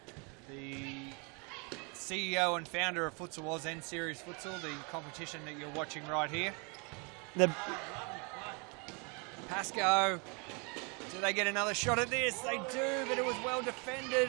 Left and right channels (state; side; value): quieter; left; 32.5 dB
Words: CEO and founder of Futsal Oz and Series Futsal, the competition that you're watching right here. Pascoe, do they get another shot at this? They do, but it was well